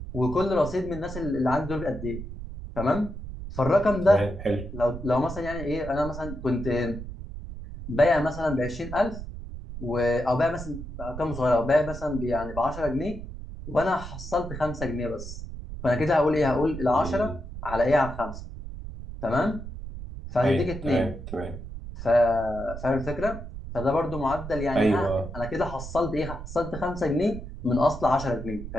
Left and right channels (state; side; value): noise; right; rumble, 10 dB below the sound